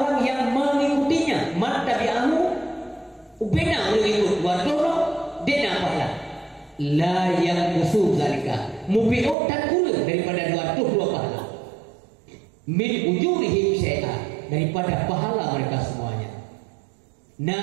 yang mengikutinya, man tabi'ahu, ubena mengikut wadono, dia pahala. La yang usul zalika, mubi'ut dan kurang daripada dua pahala. Min ujurihim syai'ah, daripada pahala mereka semuanya.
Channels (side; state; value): left; drops out; at 9.3 s